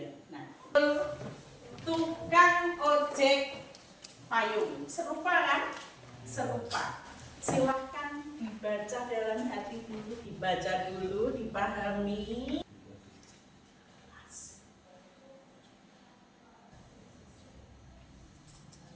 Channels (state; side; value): identical; both; correlation 1.00